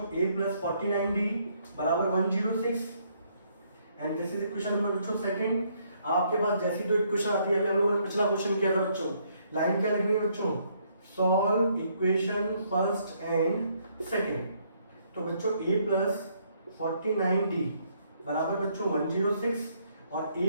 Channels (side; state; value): both; inverted; correlation -0.70